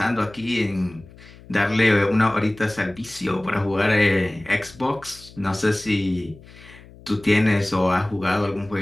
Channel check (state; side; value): noise; left; hum, 21 dB below the sound